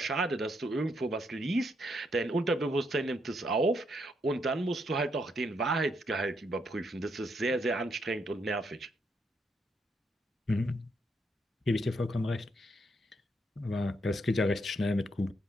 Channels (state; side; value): normal; both; correlation 0.76